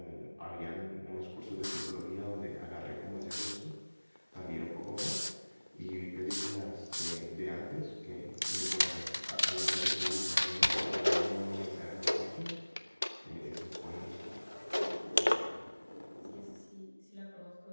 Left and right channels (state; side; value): inverted; both; correlation -1.00